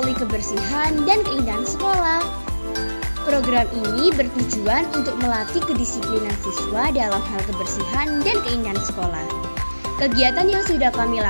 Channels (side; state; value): both; inverted; correlation -1.00